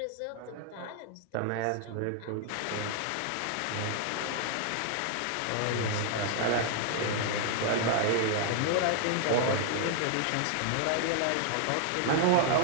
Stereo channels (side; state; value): both; different; correlation 0.00